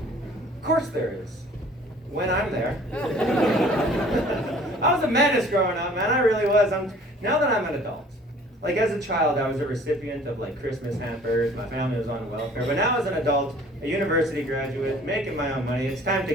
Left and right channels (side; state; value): both; normal; correlation 0.51